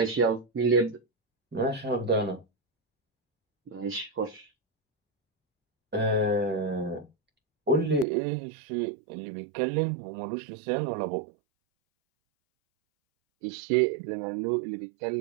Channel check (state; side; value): drops out; left; at 8.1 s